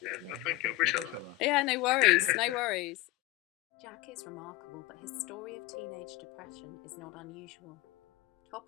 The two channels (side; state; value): right; quieter; 18.1 dB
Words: No, thank you. I appreciate that. Yeah, no worries, no worries. Jack is remarkable, but his story of teenage depression is not unusual.